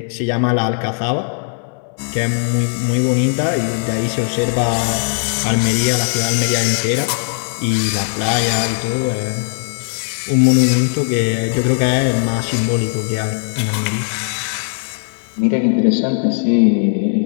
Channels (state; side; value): silent; right; 67 dB below the other